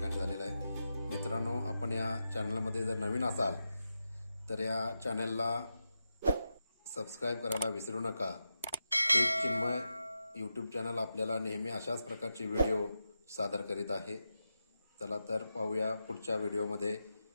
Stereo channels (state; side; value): inverted; both; correlation -0.89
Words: झालेलं आहे. मित्रांनो, आपण या चॅनलमध्ये जर नवीन असाल तर या चॅनलला सबस्क्राईब करायला विसरू नका. एक चिन्मय यूट्यूब चॅनल आपल्याला नेहमी अशाच प्रकारचे व्हिडिओ सादर करीत आहे. चला तर पाहूया पुढच्या व्हिडिओमध्ये